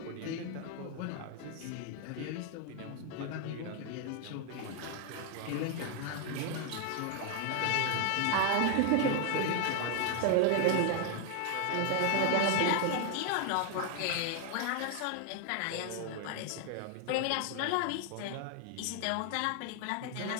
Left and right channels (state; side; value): different; both; correlation 0.00